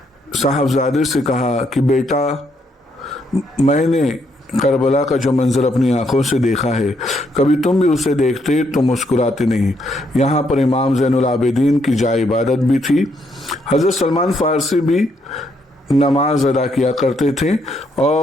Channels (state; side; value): normal; both; correlation 0.74